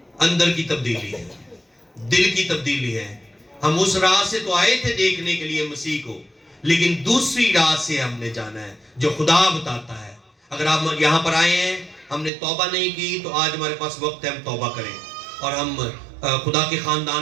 اندر کی تبدیلی ہے, دل کی تبدیلی ہے. ہم اس راہ سے تو آئے تھے دیکھنے کے لیے مسیح کو, لیکن دوسری راہ سے ہم نے جانا ہے جو خدا بتاتا ہے. اگر آپ یہاں پر آئے ہیں, ہم نے توبہ نہیں کی, تو آج ہمارے پاس وقت ہے ہم توبہ کریں اور ہم خدا کے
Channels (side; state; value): left; drops out; at 12.3 s